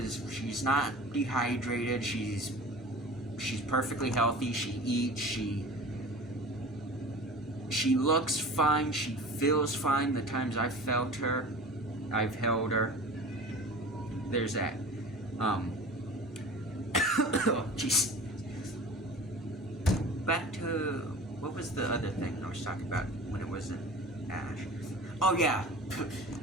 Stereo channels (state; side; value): normal; both; correlation 0.38